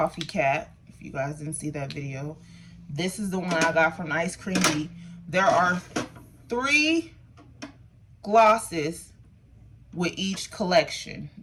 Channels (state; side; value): identical; both; correlation 1.00